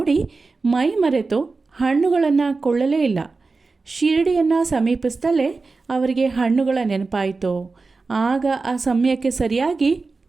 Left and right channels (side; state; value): left; quieter; 4.0 dB